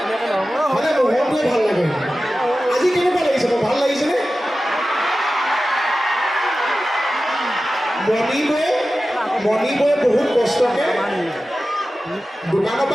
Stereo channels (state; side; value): normal; both; correlation 0.95